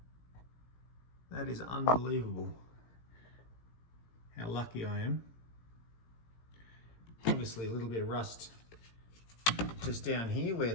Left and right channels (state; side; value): late; right; 17 ms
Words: That is unbelievable. How lucky I am. Obviously a little bit of rust just down here where